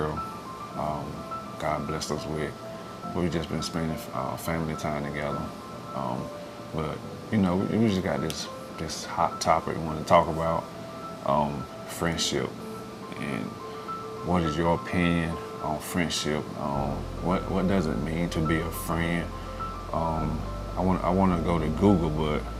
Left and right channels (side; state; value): both; identical; correlation 1.00